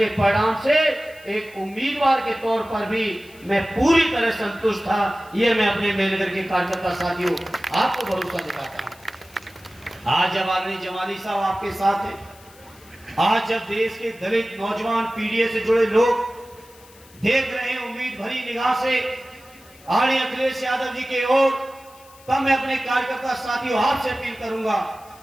परिणाम से एक उम्मीदवार के तौर पर भी मैं पूरी तरह संतुष्ट था। ये मैं अपने महेनगर के कार्यकर्ता साथियों आपको भरोसा दिलाता हूं। आज जब आदरणीय जमाली साहब आपके साथ है, आज जब देश के दलित नौजवान पीढ़ी से जुड़े लोग देख रहे हैं उम्मीद भरी निगाह से आदरणीय अखिलेश यादव जी की ओर, तब मैं अपने कार्यकर्ता साथियों आपसे अपील करूंगा,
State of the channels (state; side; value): noise; left; hiss, 25 dB below the sound